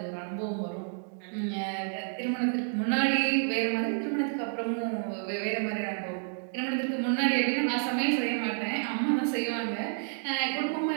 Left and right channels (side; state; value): left; silent; digital silence